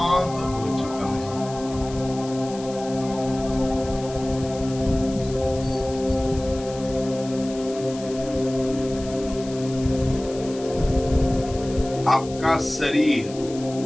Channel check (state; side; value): noise; left; hiss, 17 dB below the sound